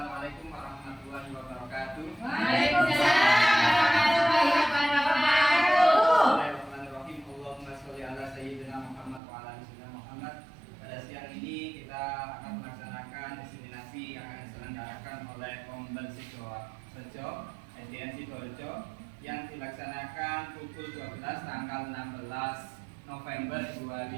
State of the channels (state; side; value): drops out; left; at 9.2 s